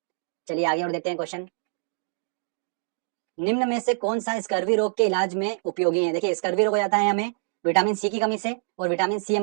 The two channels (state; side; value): silent; left; digital silence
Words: चलिए आगे और देखते हैं क्वेश्चन। निम्न में से कौन सा स्कर्वी रोग के इलाज में उपयोगी है? देखिए स्कर्वी रोग हो जाता है हमें विटामिन सी की कमी से, और विटामिन सी